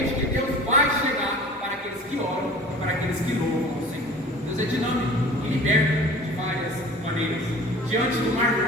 que Deus vai chegar para aqueles que oram, para aqueles que louvam o Senhor. Deus é dinâmico e liberta de várias maneiras. Diante do Mar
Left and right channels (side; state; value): both; normal; correlation 0.43